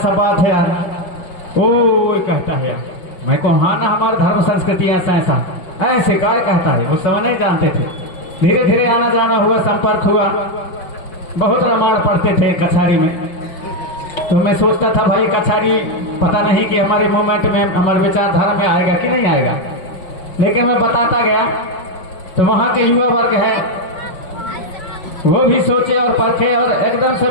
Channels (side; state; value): right; late; 5.6 ms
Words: बात है यार, ओ कहता है यार, मैं को हाँ ना हमारे धर्म संस्कृति ऐसा ऐसे काय कहता है। उस समय नहीं जानते थे, धीरे धीरे आना जाना हुआ, संपर्क हुआ। बहुत रामायण पढ़ते थे कछारी में। तो मैं सोचता था भाई कछारी पता नहीं कि हमारे मूवमेंट में, हमारे विचारधारा में आएगा कि नहीं आएगा, लेकिन मैं बताता गया तो वहाँ के युवा वर्ग है वो भी सोचे और परखे और एकदम से